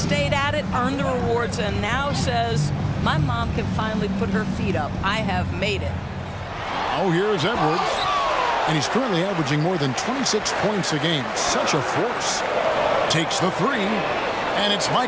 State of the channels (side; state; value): both; identical; correlation 1.00